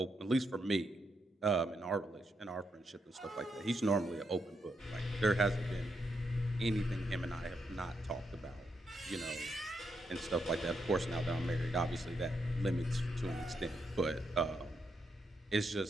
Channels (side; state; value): both; normal; correlation 0.81